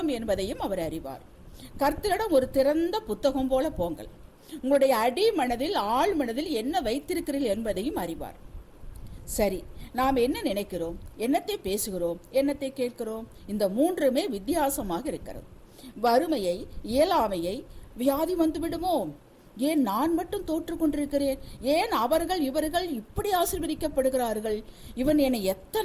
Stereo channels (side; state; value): both; identical; correlation 1.00